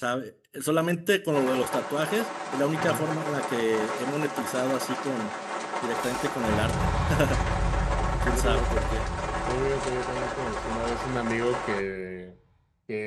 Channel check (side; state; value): both; identical; correlation 1.00